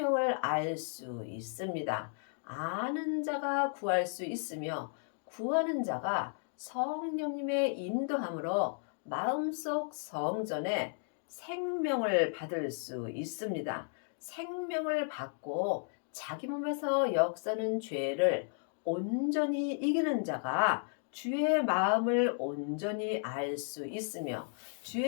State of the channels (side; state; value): right; silent; 55 dB below the other